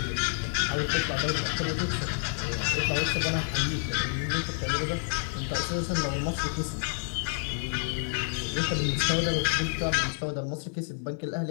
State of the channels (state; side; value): silent; right; 59 dB below the other